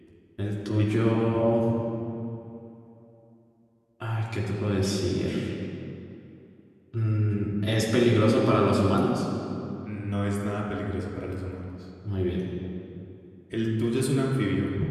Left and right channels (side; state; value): both; identical; correlation 1.00